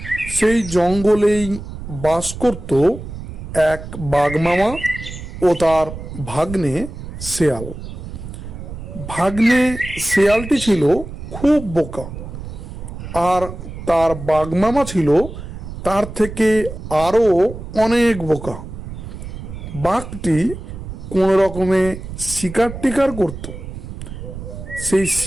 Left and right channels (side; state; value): right; noise; rumble, 10 dB below the sound